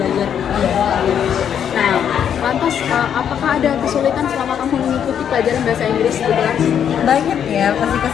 Nah, lantas apakah ada kesulitan selama kamu mengikuti pelajaran bahasa Inggris di kelas? Banyak ya pasti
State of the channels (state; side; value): quieter; right; 8.7 dB